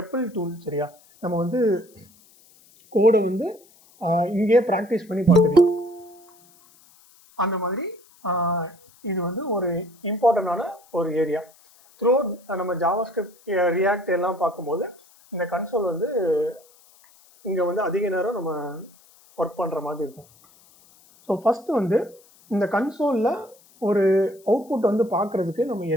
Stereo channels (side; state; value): left; noise; hiss, 28 dB below the sound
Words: டூல். சரியா? நம்ம வந்து கோடை வந்து இங்கேயே ப்ராக்டிஸ் பண்ணி பார்த்துக்கலாம். அந்த மாதிரி இது வந்து ஒரு இம்பார்ட்டண்டான ஒரு ஏரியா. த்ரூ நம்ம ஜாவா ஸ்கிரிப்ட் ரியாக்ட் எல்லாம் பார்க்கும்போது இந்த கன்சோல் வந்து இங்கே வந்து அதிக நேரம் நம்ம ஒர்க் பண்ணுற மாதிரி இருக்கும். ஸோ ஃபஸ்ட்டு வந்து இந்த கன்சோலில் ஒரு அவுட்புட் வந்து பார்க்குறதுக்கு நம்ம